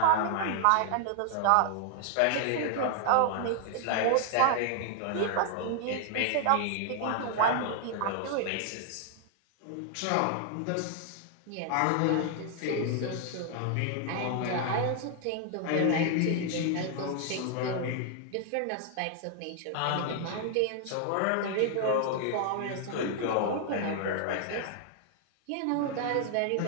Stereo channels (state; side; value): different; both; correlation 0.00